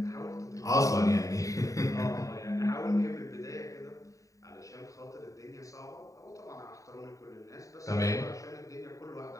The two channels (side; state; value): right; late; 0.16 ms